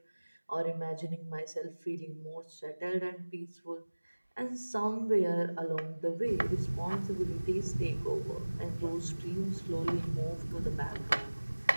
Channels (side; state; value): both; inverted; correlation -1.00